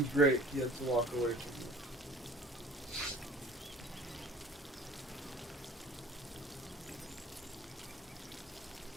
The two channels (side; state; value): both; normal; correlation 0.47